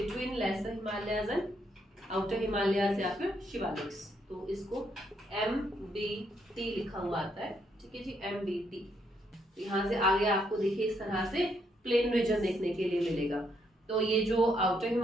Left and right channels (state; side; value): normal; both; correlation 0.74